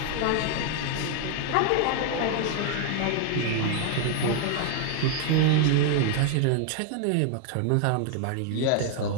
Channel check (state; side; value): different; both; correlation 0.00